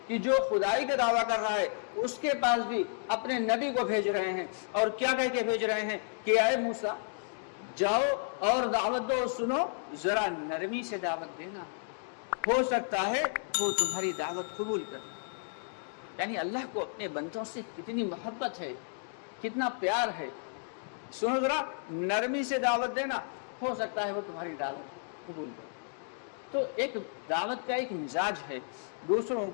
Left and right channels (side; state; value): right; silent; digital silence